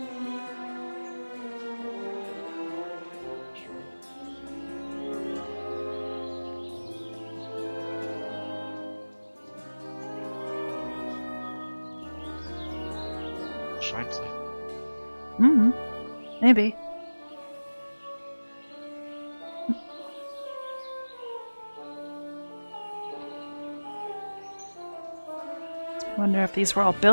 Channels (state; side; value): inverted; both; correlation -1.00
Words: Shines like. Mm-hmm. Maybe. I wonder if these were all